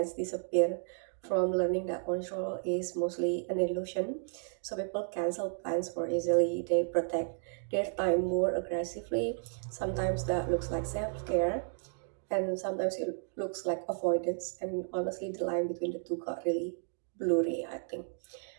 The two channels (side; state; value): left; silent; 56 dB below the other